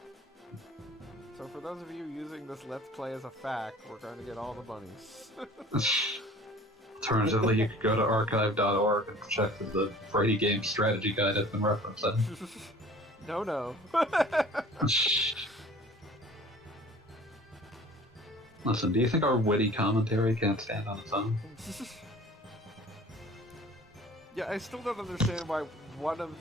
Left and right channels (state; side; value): normal; both; correlation 0.47